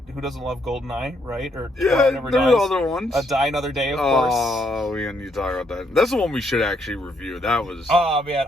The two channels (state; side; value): normal; both; correlation 0.74